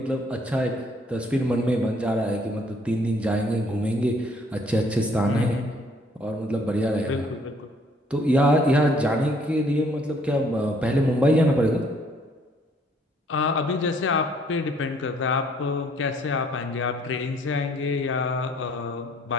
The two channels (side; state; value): both; normal; correlation 0.63